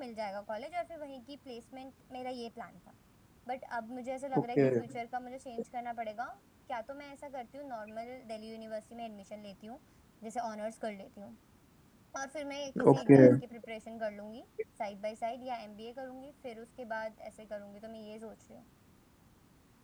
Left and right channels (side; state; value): both; identical; correlation 1.00